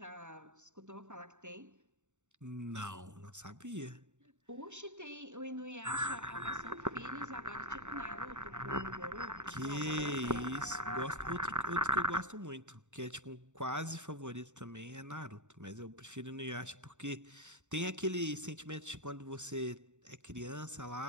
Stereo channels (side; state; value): left; late; 0.84 ms